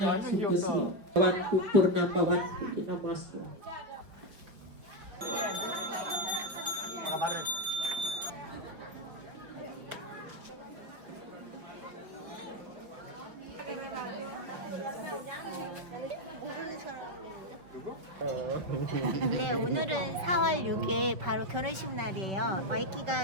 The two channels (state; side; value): late; left; 5.2 ms